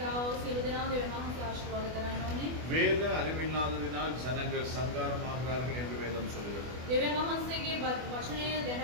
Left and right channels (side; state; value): left; late; 24 ms